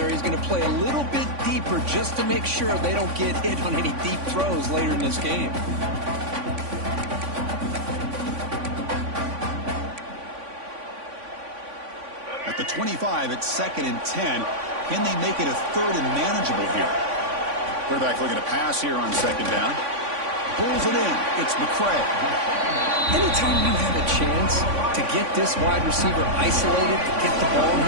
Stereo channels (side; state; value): left; late; 3.5 ms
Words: is going to play a little bit deeper just to make sure they don't get hit on any deep throws later in this game. At the 25, it's 2nd and 10. Can they make it a 3rd and manageable here? Quarterback looking to pass here on 2nd down. Pulls it in. It's McCray. Anytime you have a chance to get this wide receiver isolated, to get the ball in